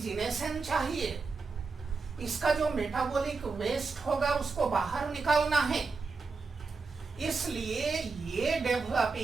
चाहिए, इसका जो मेटाबॉलिक वेस्ट होगा उसको बाहर निकालना है। इसलिए ये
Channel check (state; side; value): quieter; left; 4.4 dB